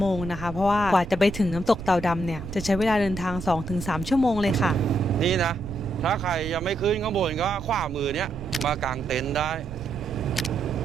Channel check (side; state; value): right; noise; rumble, 12 dB below the sound